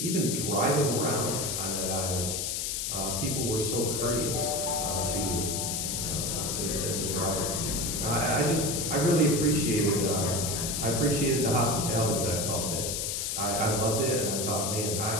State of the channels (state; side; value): noise; left; hiss, 1 dB below the sound